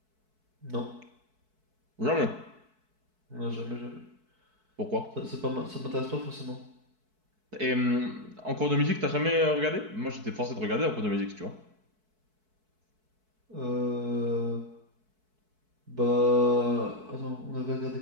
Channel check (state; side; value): late; left; 4.6 ms